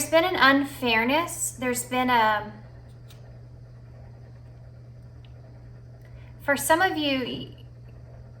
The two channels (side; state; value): both; identical; correlation 1.00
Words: been an unfairness. There's been for some of you,